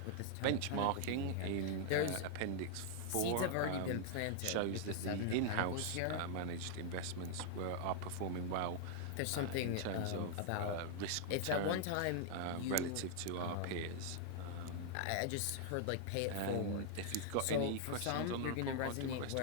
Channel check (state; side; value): different; both; correlation -0.01